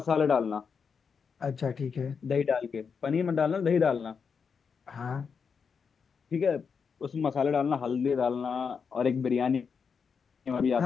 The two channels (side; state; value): right; quieter; 6.0 dB